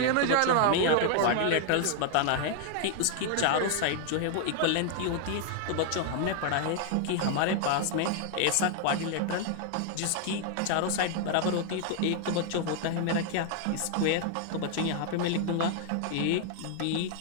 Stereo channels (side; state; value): both; different; correlation 0.00